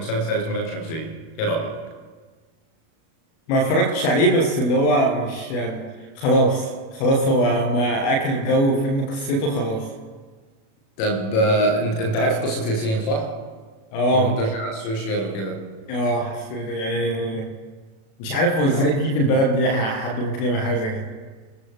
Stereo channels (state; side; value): late; right; 36 ms